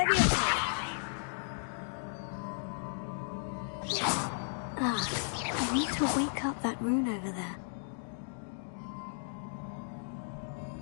I need to wake up that rune over there.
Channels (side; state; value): right; silent; digital silence